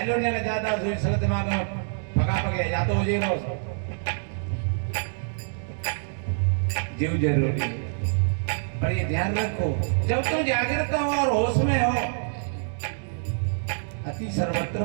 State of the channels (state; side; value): silent; left; digital silence